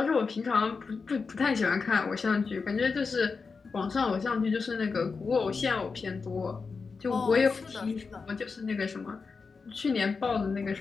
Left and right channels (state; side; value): quieter; right; 4.8 dB